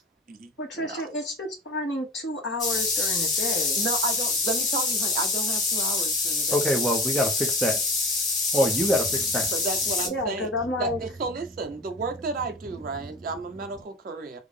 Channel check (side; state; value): both; normal; correlation 0.37